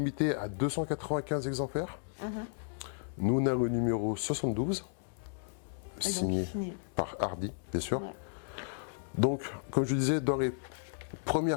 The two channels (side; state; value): right; silent; digital silence